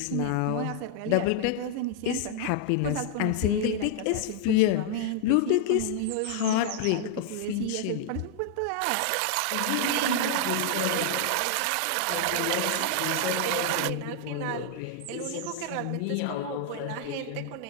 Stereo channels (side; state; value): both; different; correlation 0.00